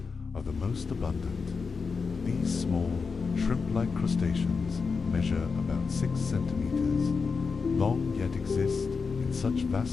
are the most abundant. These small, shrimp-like crustaceans measure about 6 centimeters long, yet exist in such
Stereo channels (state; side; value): quieter; right; 5.0 dB